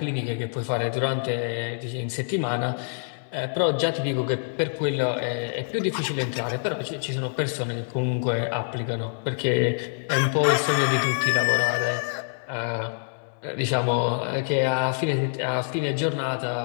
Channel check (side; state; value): right; silent; digital silence